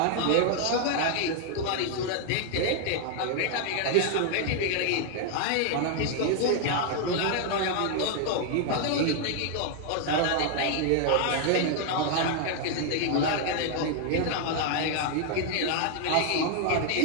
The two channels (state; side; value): different; both; correlation 0.00